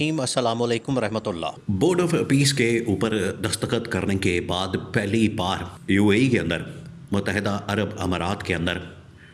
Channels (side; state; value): both; identical; correlation 1.00